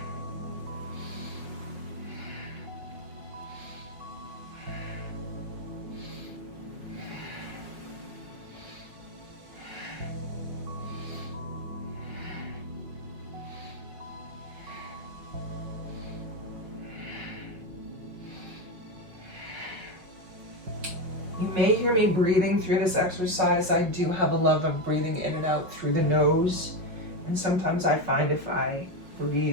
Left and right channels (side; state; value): left; late; 5.5 ms